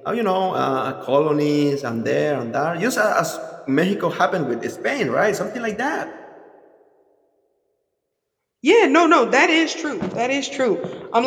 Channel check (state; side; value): identical; both; correlation 1.00